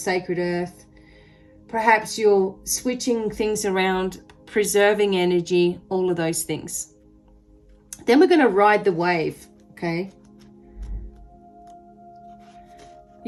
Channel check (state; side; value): identical; both; correlation 1.00